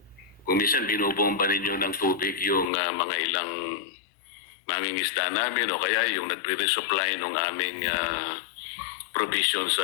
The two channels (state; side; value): drops out; right; at 2.7 s